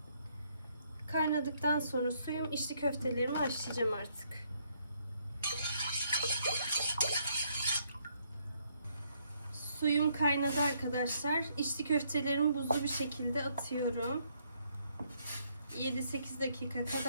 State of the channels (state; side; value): inverted; both; correlation -0.70